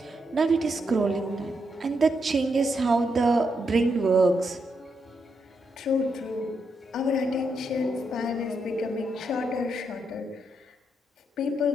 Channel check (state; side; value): normal; both; correlation 0.81